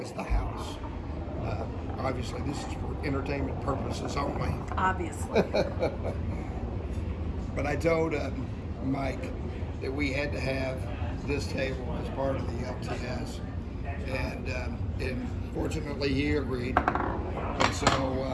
is the house. Obviously, this is for entertainment purposes only. Obviously. But I told Mike that we had to have this table as part of the LTS, and fortunately he agreed. And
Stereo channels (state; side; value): identical; both; correlation 1.00